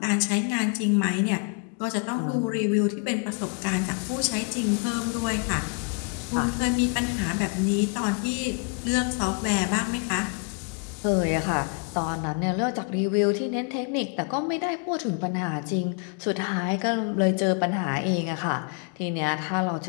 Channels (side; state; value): right; quieter; 37.6 dB